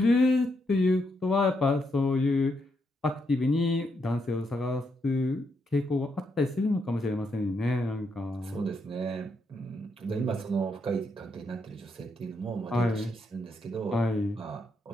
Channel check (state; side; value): normal; both; correlation 0.79